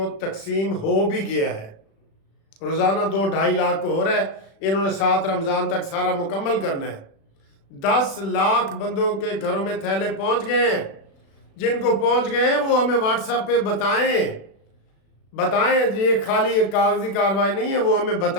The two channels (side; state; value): right; late; 36 ms